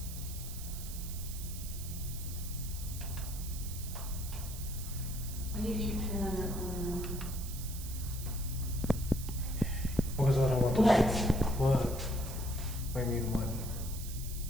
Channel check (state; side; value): noise; right; hiss, 11 dB below the sound